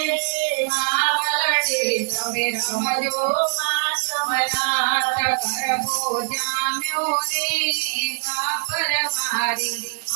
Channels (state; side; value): silent; left; 64 dB below the other